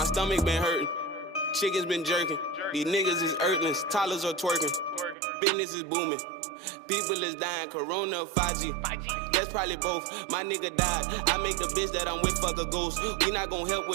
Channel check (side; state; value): left; drops out; at 5.2 s